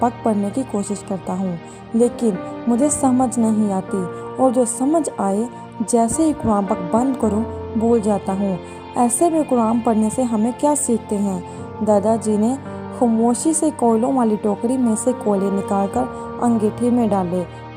पाक पढ़ने की कोशिश करता हूँ, लेकिन मुझे समझ नहीं आती और जो समझ आए जैसे ही कुरान पाक बंद करूँ भूल जाता हूँ। ऐसे में कुरान पढ़ने से हमें क्या सीखते हैं? दादाजी ने खामोशी से कोयलों वाली टोकरी में से कोयले निकालकर अंगीठी में डाले,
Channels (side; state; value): both; identical; correlation 1.00